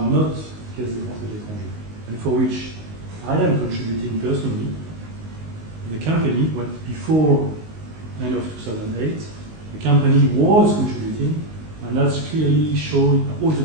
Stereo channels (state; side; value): late; left; 19 ms